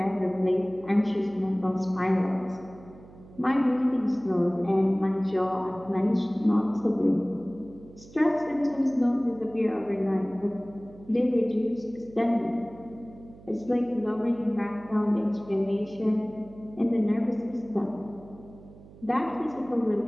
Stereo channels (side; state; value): right; noise; hum, 21 dB below the sound